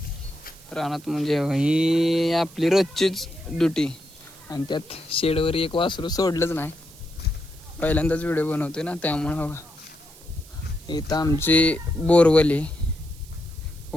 रानात म्हणजे ही आपली रोजचीच ड्युटी. आणि त्यात शेडवर एक वासरू सोडलंच नाही. पहिल्यांदाच व्हिडिओ बनवतोय ना त्यामुळं. बघा इथं आमची बोरवली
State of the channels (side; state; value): right; noise; hiss, 22 dB below the sound